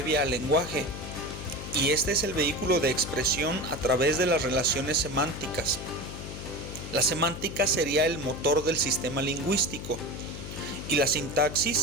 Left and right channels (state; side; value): noise; left; hum, 9 dB below the sound